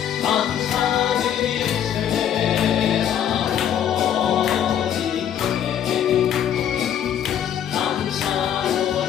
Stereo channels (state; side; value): quieter; right; 9.6 dB